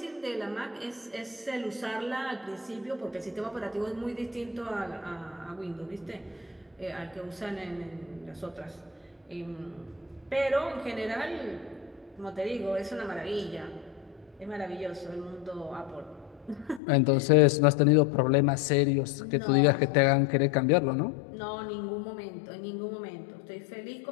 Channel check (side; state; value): right; drops out; at 16.8 s